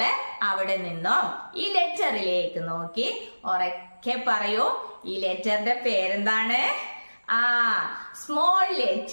അവിടെ നിന്നും ഈ ലെറ്ററിലേക്ക് നോക്കി ഉറക്കെ പറയൂ. ഈ ലെറ്ററിന്റെ പേരെന്താണ്? Small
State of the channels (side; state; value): both; inverted; correlation -1.00